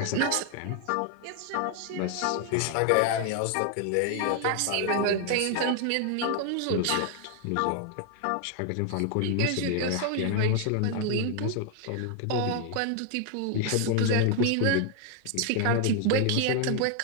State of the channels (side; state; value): both; different; correlation 0.00